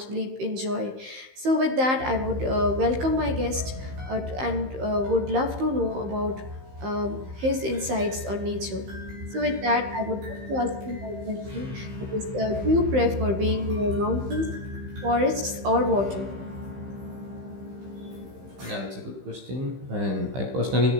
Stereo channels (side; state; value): left; late; 15 ms